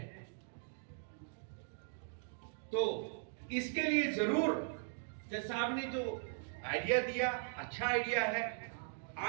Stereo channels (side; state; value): left; silent; digital silence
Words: तो इसके लिए जरूर जज साहब ने जो आइडिया दिया, अच्छा आइडिया है।